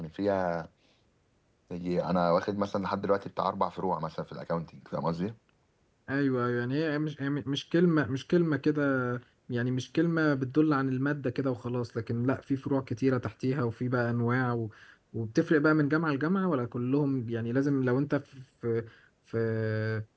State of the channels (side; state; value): both; identical; correlation 1.00